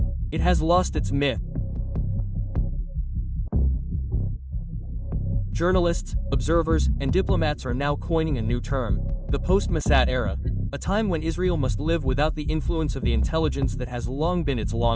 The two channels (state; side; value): identical; both; correlation 1.00